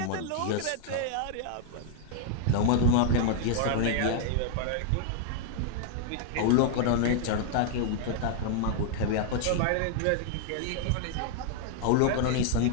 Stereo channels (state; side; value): different; both; correlation -0.01